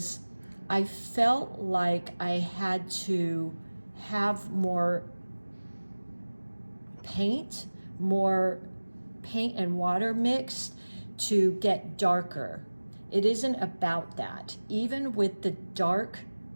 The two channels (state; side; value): inverted; both; correlation -1.00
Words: I felt like I had to have more paint and water mixed to get darker. It isn't about that. Even with the dark